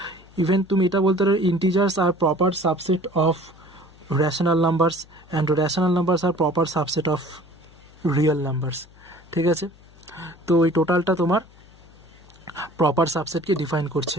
ইভেন তুমি এটা বলতে পারো integers are proper subset of rational numbers and rational numbers are proper subset of real numbers. ঠিক আছে, তো এই টোটালটা তোমার প্রপার সাবসেটকে ডিফাইন করছে।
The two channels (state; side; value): noise; left; hum, 25 dB below the sound